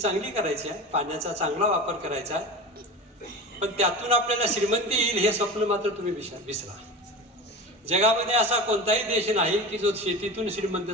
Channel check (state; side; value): normal; both; correlation 0.30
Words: करायची आहे, पाण्याचा चांगला वापर करायचा आहे, पण त्यातून आपल्याला श्रीमंती येईल हे स्वप्न मात्र तुम्ही विसरा. जगामध्ये असा कोणताही देश नाही की जो शेतीतून श्रीमंत